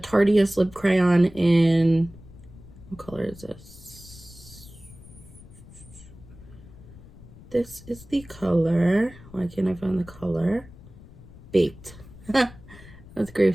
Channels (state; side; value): noise; left; rumble, 19 dB below the sound